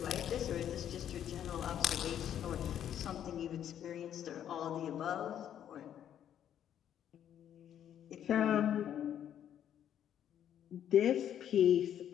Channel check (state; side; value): quieter; right; 10.1 dB